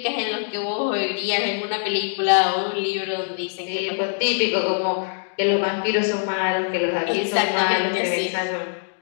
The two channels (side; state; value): right; silent; digital silence